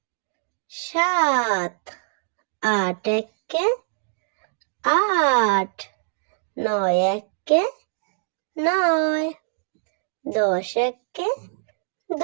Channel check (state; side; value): silent; left; digital silence